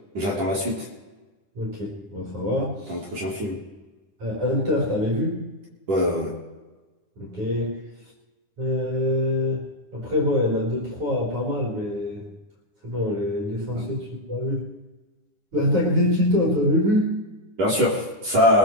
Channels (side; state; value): left; late; 10 ms